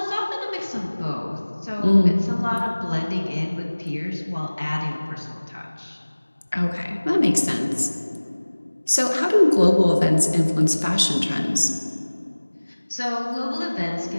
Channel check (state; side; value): inverted; both; correlation -1.00